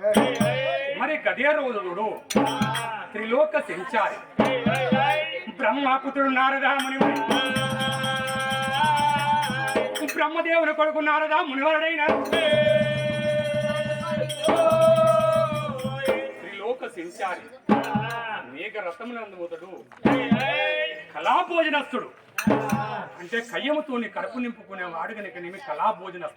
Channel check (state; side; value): identical; both; correlation 1.00